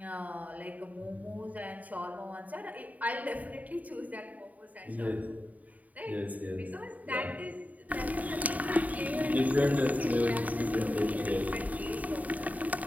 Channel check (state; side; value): late; left; 0.073 ms